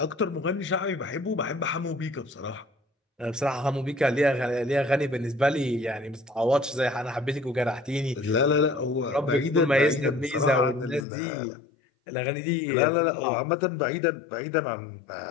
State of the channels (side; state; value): right; drops out; at 11.1 s